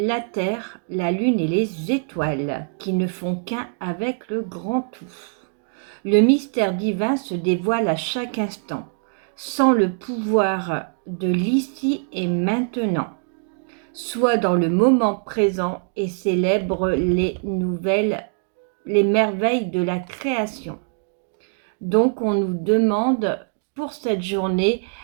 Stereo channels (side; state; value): left; silent; 58 dB below the other